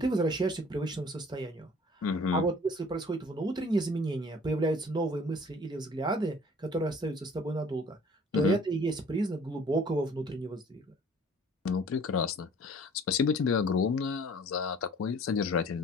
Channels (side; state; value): both; normal; correlation 0.51